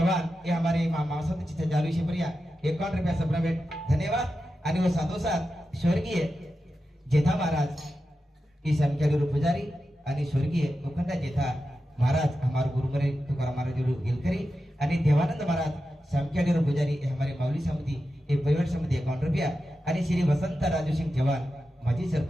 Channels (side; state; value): both; normal; correlation 0.91